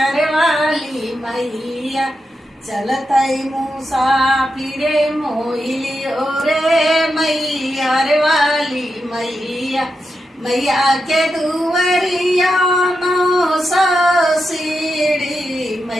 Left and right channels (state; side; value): normal; both; correlation 0.87